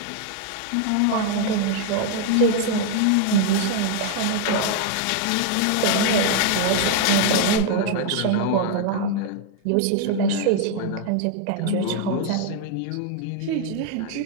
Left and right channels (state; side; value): different; both; correlation 0.00